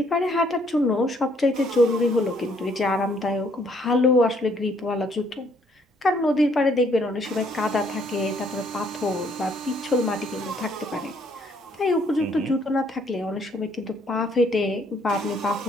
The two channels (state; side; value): normal; both; correlation 0.66